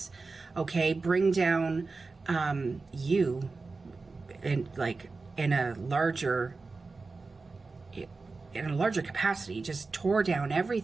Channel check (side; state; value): left; quieter; 4.0 dB